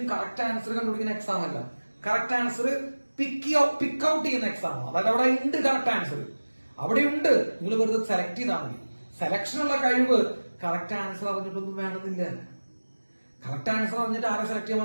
കറക്റ്റ് ആൻസർ കണ്ടുപിടിക്കുന്ന എക്സാം അല്ല. കറക്റ്റ് ആൻസർ പിക്ക് ഔട്ട് ചെയ്യുന്ന എക്സാം ആണ്. അതായത് അവിടെ ഉണ്ട് കറക്റ്റ് ആൻസർ, അവിടെ ഉണ്ട്. നിങ്ങൾ വെറുതെ സെലക്ട് ചെയ്താൽ മതി. സെലക്ഷനുള്ള കഴിവ് കറക്റ്റ് ആൻസർ അറിഞ്ഞിട്ടൊന്നും വേണമെന്നില്ല. കറക്റ്റ് ആൻസർ അറിഞ്ഞിട്ട് ആരെ സെലക്ട് ചെയ്യാൻ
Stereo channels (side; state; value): both; inverted; correlation -1.00